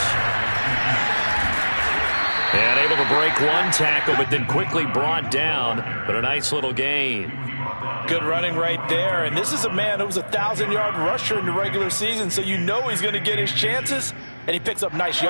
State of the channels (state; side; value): inverted; both; correlation -1.00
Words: And able to break one tackle, but then quickly brought down, but a nice little gain. Good running right there. And this is a man who was a 1,000-yard rusher in the regular season, so you know he's going to get his chances, and he picks up nice